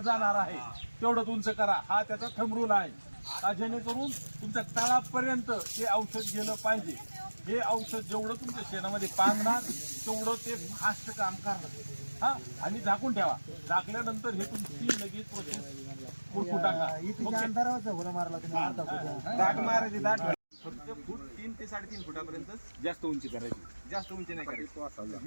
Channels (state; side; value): inverted; both; correlation -1.00